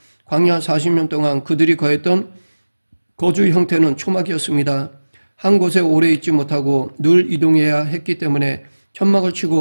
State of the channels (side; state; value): both; inverted; correlation -1.00